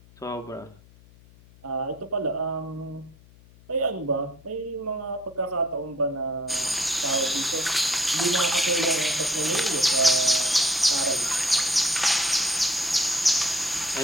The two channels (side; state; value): left; noise; hum, 25 dB below the sound